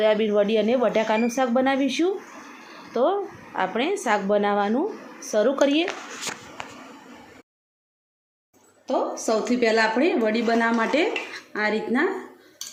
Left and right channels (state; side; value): identical; both; correlation 1.00